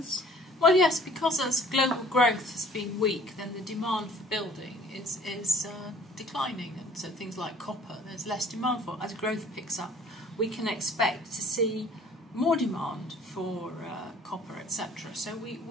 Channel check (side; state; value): both; normal; correlation 0.53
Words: Well, yes, because as global growth has been weak, then the demand for building is declining. And so things like copper, there's less demand for. As growth picks up, we can expect to see more demand for copper, etc. So